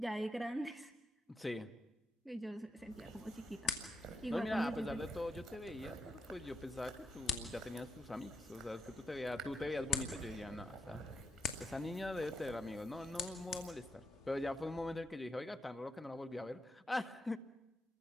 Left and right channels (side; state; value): both; normal; correlation 0.80